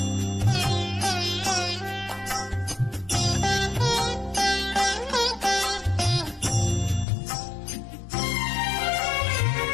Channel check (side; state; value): right; drops out; at 7.1 s